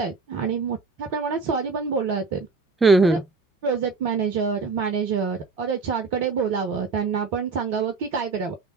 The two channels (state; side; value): quieter; left; 4.4 dB